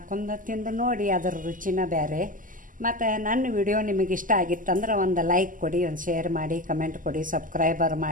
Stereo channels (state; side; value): late; left; 0.39 ms